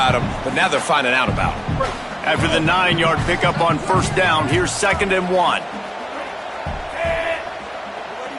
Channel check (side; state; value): both; identical; correlation 1.00